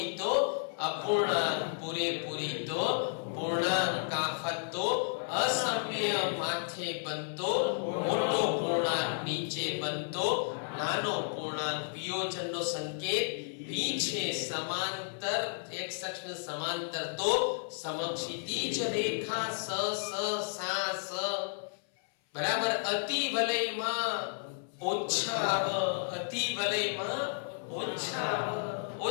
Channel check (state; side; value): silent; right; 56 dB below the other